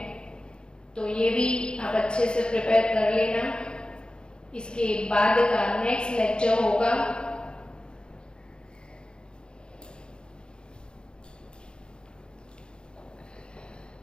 तो ये भी आप अच्छे से प्रिपेयर कर लेना। इसके बाद का नेक्स्ट लेक्चर होगा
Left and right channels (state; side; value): late; right; 0.050 ms